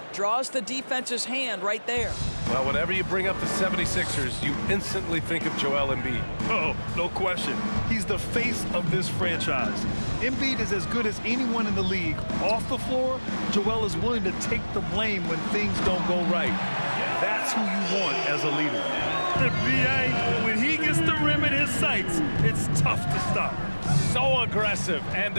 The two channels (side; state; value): both; inverted; correlation -1.00